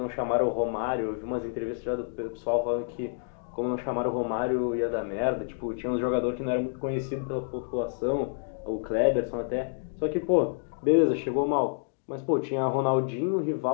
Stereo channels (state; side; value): silent; right; digital silence